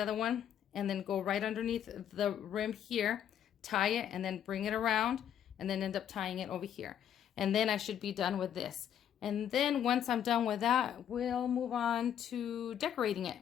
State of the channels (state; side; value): quieter; right; 9.7 dB